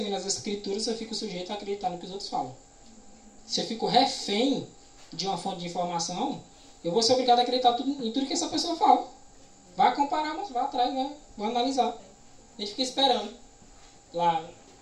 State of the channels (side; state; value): both; identical; correlation 1.00